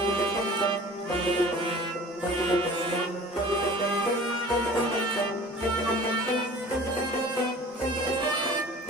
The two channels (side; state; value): both; normal; correlation 0.44